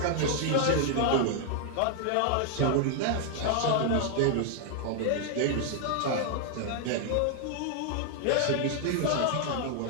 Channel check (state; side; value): different; both; correlation 0.00